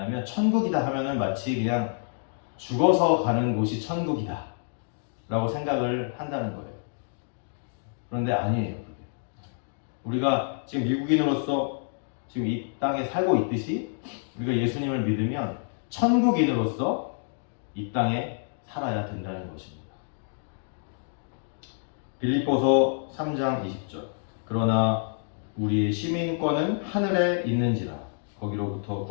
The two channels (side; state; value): right; silent; digital silence